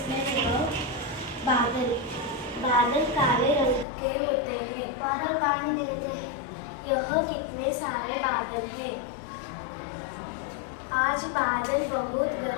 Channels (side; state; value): right; drops out; at 3.9 s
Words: about बादल. बादल काले रंग के होते हैं. बादल पानी देते हैं. यह कितने सारे बादल हैं. आज बादल बहुत